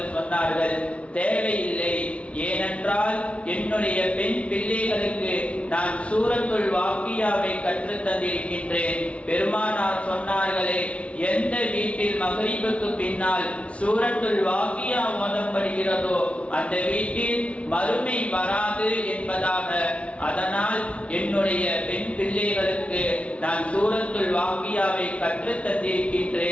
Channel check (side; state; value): right; late; 0.062 ms